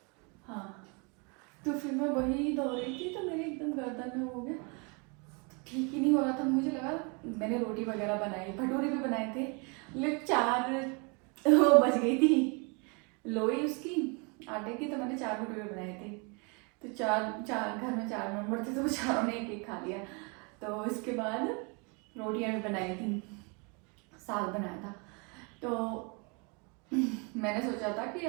हाँ, तो फिर मैं वही दो रही थी, तो मेरे एकदम गर्दन में हो गया, ठीक ही नहीं हो रहा था। मुझे लगा, मैंने रोटी वगैरह बनाई, भटूरे भी बनाए थे, लेकिन 4 वो बच गई थी लोई उसकी आटे की, तो मैंने 4 भटूरे बनाए थे। तो चार चार घर में 4 मेंबर थे, तो वो चारों ने एक एक खा लिया। तो इसके बाद रोटियां भी बनाई थी, साग बनाया था। तो मैंने सोचा था कि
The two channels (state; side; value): quieter; left; 32.6 dB